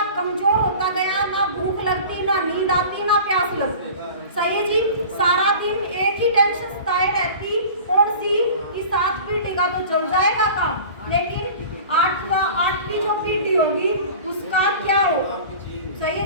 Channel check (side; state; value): both; inverted; correlation -0.39